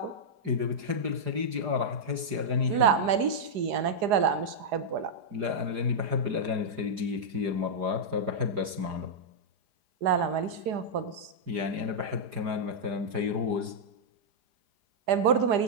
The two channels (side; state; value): left; late; 4.8 ms